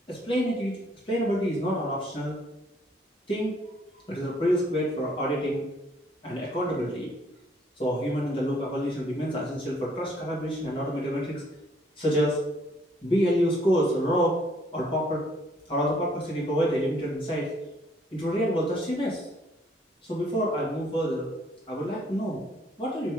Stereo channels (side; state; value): both; normal; correlation 0.64